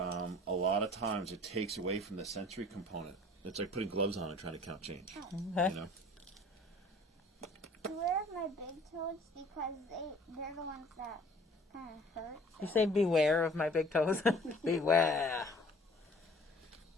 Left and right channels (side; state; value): both; normal; correlation 0.50